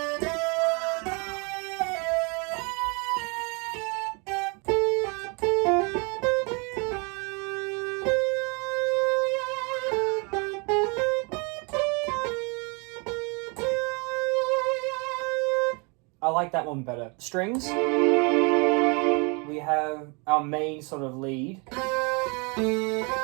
I like that one better. Strings. We have our main sort of lead.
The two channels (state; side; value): quieter; left; 31.7 dB